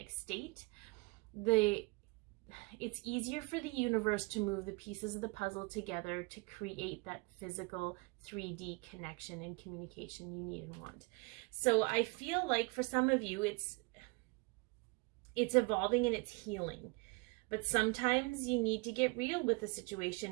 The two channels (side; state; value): left; quieter; 28.4 dB